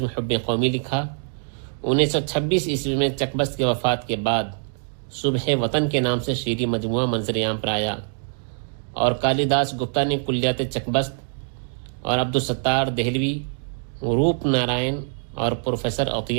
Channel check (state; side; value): silent; left; 63 dB below the other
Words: حب قومی لکھا۔ 1926 عیسوی میں چکبست کی وفات کے بعد صبح وطن کے نام سے شعری مجموعہ منظر عام پر آیا، اور کالی داس گپتا نے کلیات چکبست اور عبدالستار دہلوی، روپ نارائن اور پروفیسر